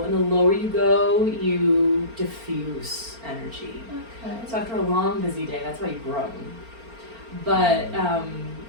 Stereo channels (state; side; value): late; left; 4.4 ms